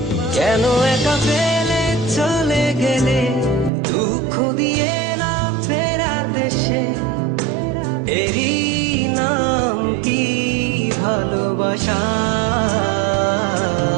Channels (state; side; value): drops out; left; at 3.7 s